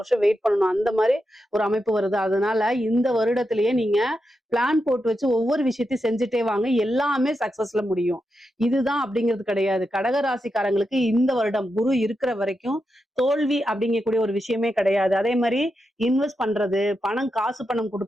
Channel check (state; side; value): normal; both; correlation 0.87